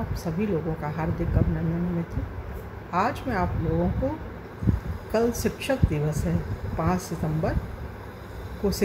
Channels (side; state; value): both; identical; correlation 1.00